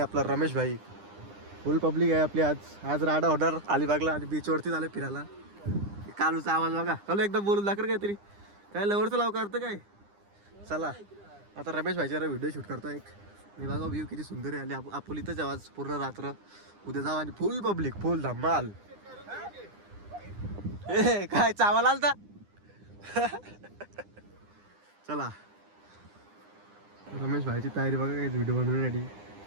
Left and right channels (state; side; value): late; left; 9.9 ms